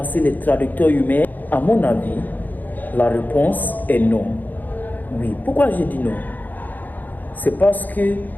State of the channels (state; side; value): late; right; 0.085 ms